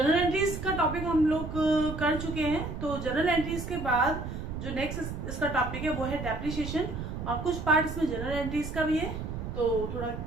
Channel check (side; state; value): right; noise; rumble, 6 dB below the sound